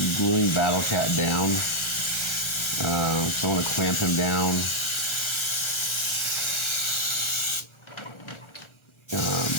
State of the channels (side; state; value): right; late; 1.4 ms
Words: gluing Battlecat down. So I want to clamp him down.